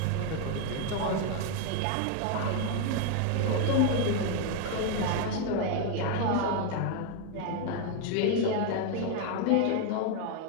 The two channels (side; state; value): both; different; correlation 0.01